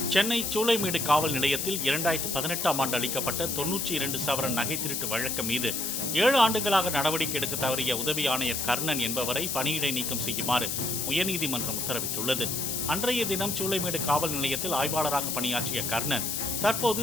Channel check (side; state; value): left; noise; hiss, 1 dB below the sound